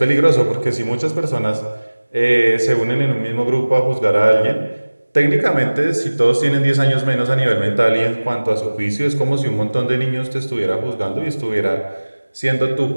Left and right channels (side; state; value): both; inverted; correlation -1.00